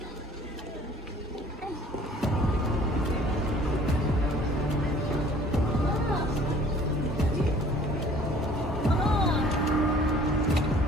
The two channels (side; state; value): both; normal; correlation 0.53